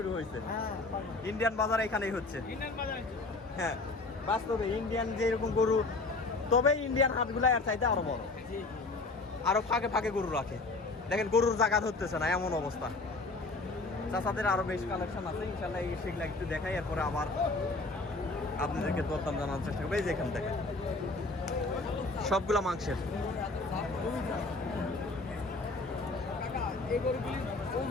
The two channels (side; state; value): right; quieter; 3.4 dB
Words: হয়েছে। হ্যাঁ, ইন্ডিয়ান বাজার এখানেই হচ্ছে। হ্যাঁ, বাস্তবে ইন্ডিয়ান যেরকম গরু, তবে ইন্ডিয়ান হাটগুলা এর চাইতে আরো বড়, জি জি। আরো ফাঁকে ফাঁকে গরু রাখে। দেখেন, গরুর জায়গা ধরতেছে না, এমন অবস্থা। চাচাদের আরো বেশ কালেকশন আছে, ইনশাল্লাহ সেগুলা একটু দেখাই, এরপরে আবার আপনাদেরকে দরদাম জানানোর চেষ্টা করবো। এই যে এখানে দেখেন, সবগুলা মাংসের। এই গরুগুলির